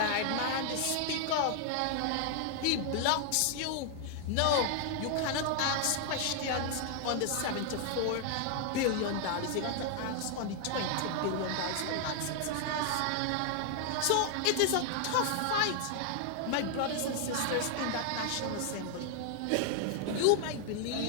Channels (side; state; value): both; different; correlation 0.00